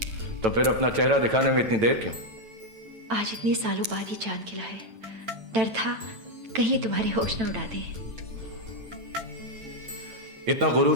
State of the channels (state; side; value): late; left; 9.0 ms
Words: तो फिर अपना चेहरा दिखाने में इतनी देर क्यों? आज इतने सालों बाद ही चांद खिला है। डर था कहीं ये तुम्हारे होश न उड़ा दे। इतना गुरूर